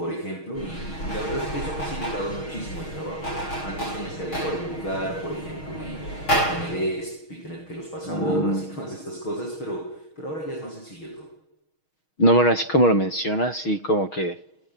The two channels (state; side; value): late; right; 6.4 ms